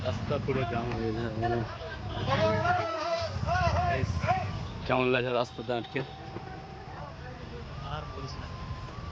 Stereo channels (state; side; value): identical; both; correlation 1.00